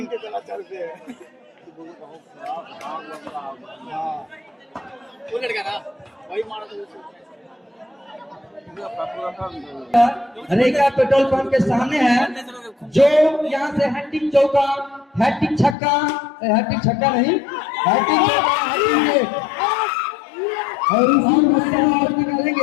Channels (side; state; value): right; drops out; at 15.8 s